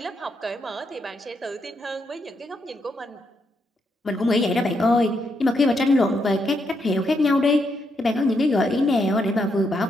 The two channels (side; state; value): both; normal; correlation 0.79